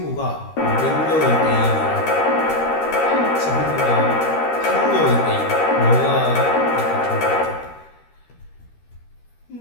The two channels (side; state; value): right; late; 13 ms